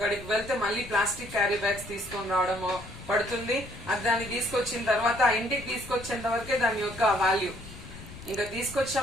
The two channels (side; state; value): left; noise; rumble, 15 dB below the sound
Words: వెళ్తే మళ్ళీ ప్లాస్టిక్ క్యారీ బ్యాగ్స్ తీసుకొని రావడము పడుతుంది. అది దాన్ని తీసుకొచ్చిన తర్వాత ఇంటికి తీసుకొచ్చేంత వరకే దాని యొక్క వాల్యూ. ఇంకా